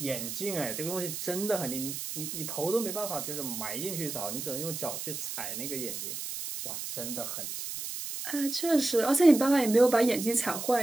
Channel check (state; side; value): noise; right; hiss, 6 dB below the sound